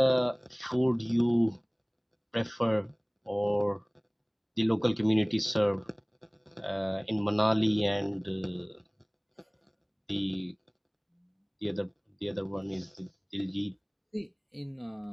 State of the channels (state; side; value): identical; both; correlation 1.00